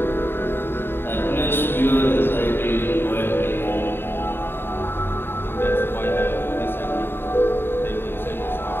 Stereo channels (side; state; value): right; late; 0.11 ms